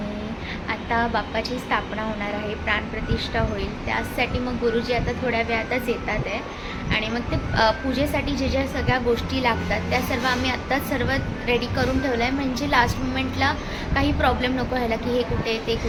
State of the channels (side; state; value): both; identical; correlation 1.00